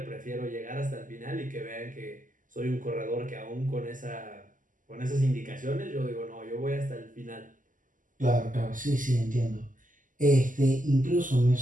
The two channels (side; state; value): left; late; 0.38 ms